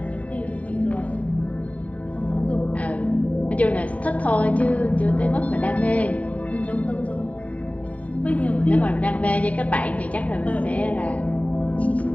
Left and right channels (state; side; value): late; right; 0.068 ms